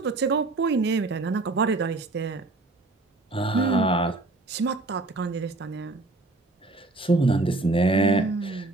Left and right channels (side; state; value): left; quieter; 3.1 dB